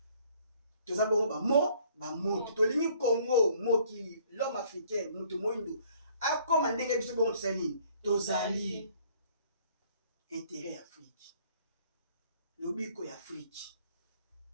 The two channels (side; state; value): both; inverted; correlation -0.60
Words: Toza bongo ba moto. Tolingi Congo, mokili, l'homme africain, mutu moindo. A comme ndenge biso bongo tozali. Tozali. Intérêt Afrique. Lobiko ya Afrique.